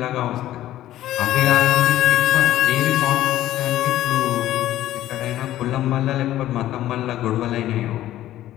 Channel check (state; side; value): quieter; right; 13.7 dB